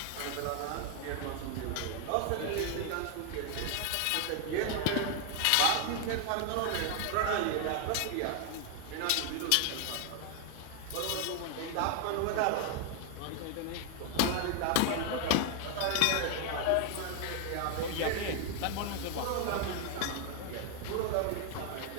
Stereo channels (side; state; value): both; different; correlation 0.00